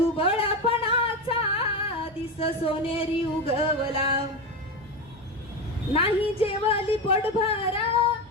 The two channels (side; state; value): both; normal; correlation 0.18